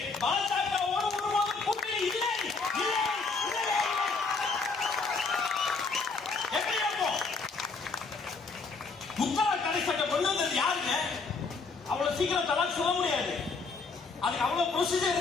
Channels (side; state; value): right; quieter; 4.3 dB